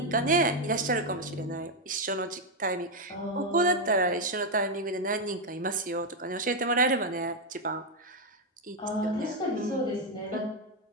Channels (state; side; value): normal; both; correlation 0.02